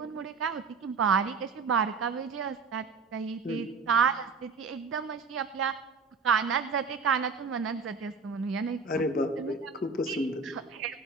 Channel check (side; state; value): left; quieter; 4.8 dB